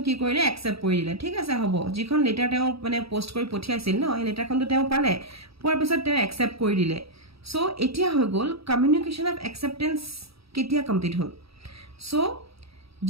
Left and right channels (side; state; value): left; late; 0.77 ms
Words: কি কৰিলে একচেপ্ট কৰি দিলে ঠিক আছে হ'ব যিখন লেটাৰ তেওঁ মানে পোষ্ট কৰি পঠিয়াইছিল ন এই লেটাৰখনটো তেওঁ পালে পোৱাৰ পিছত তেওঁ একচেপ্ট কৰি দিলে সো এতিয়া হৈ গ'ল কমিউনিকেশ্যন অফ একচেপ্টেন্স কেতিয়া কমপ্লিট হ'ল সো